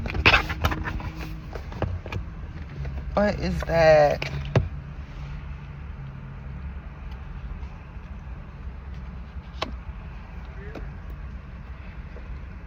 What is that?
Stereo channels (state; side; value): identical; both; correlation 1.00